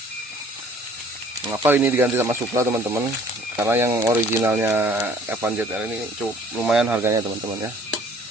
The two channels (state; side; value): normal; both; correlation 0.55